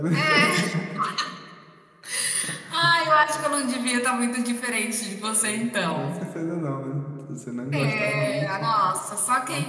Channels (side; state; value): both; identical; correlation 1.00